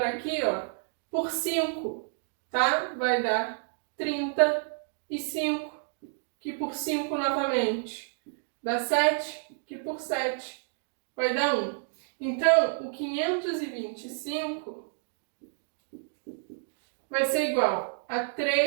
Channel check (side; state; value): left; silent; digital silence